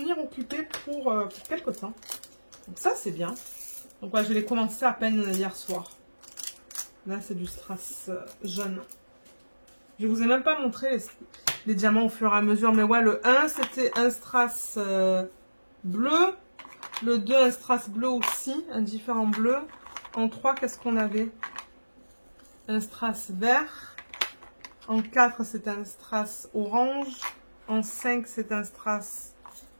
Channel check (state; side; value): inverted; both; correlation -1.00